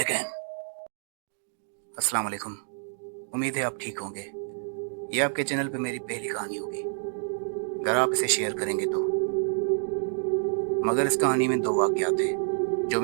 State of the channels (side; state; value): left; silent; 59 dB below the other